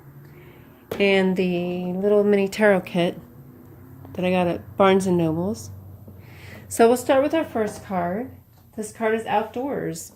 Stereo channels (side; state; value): both; identical; correlation 1.00